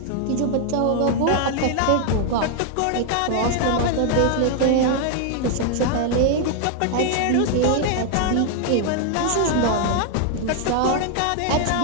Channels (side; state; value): both; different; correlation 0.00